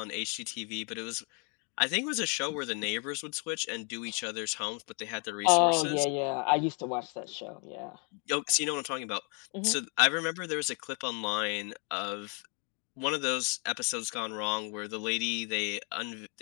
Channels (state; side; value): quieter; right; 36.5 dB